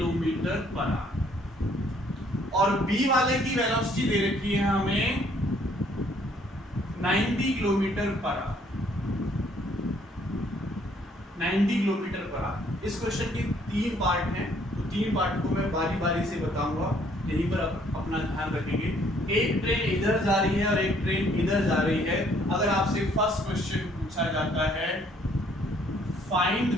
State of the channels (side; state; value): both; normal; correlation 0.63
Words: पर आवर और बी वाले की वेलोसिटी दे रखी है हमें 90 kilometre per our, 90 kilometre per our. इस क्वेश्चन के तीन पार्ट हैं, तो तीन पार्ट को मैं बारी बारी से बताऊंगा, यहीं पर अपना ध्यान रखेंगे। एक ट्रेन इधर जा रही है और एक ट्रेन इधर जा रही है। अगर आपसे फर्स्ट क्वेश्चन पूछा जाता है find